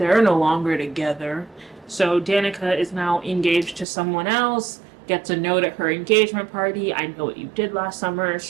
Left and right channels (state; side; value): drops out; left; at 3.9 s